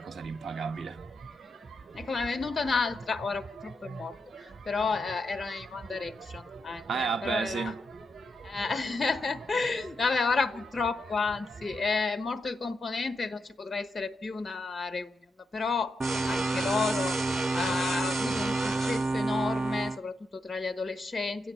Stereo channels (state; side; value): normal; both; correlation 0.84